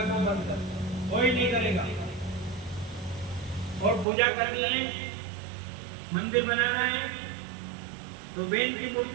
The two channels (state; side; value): drops out; left; at 4.0 s